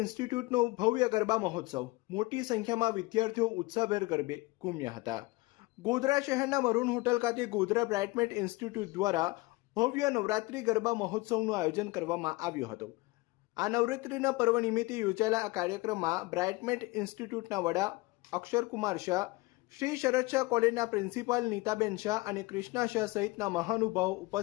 ભવ્ય ગરબા મહોત્સવ. મોટી સંખ્યામાં વિદ્યાર્થીઓ ઉત્સાહભેર ગરબે ઘૂમ્યા હતા. ગોધરા શહેરના મરૂન હોટલ ખાતે ગોધરા બ્રાઇટમેન્ટ ઇન્સ્ટિટ્યૂટ દ્વારા ભવ્ય નવરાત્રિ ગરબા મહોત્સવનું આયોજન કરવામાં આવ્યું હતું. આ નવરાત્રિના પર્વ નિમિત્તે યોજાયેલા આ કાર્યક્રમમાં બ્રાઇટમેન્ટ ઇન્સ્ટિટ્યૂટના વડા અક્ષરકુમાર શાહ, શ્રી શરદ શાહ કોલેજના પ્રિન્સિપાલ નીતાબેન શાહ અને કૃષ્ણા શાહ સહિતના મહાનુભાવો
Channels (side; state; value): right; quieter; 22.6 dB